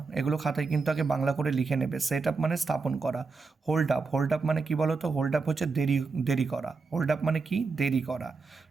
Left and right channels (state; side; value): quieter; left; 4.4 dB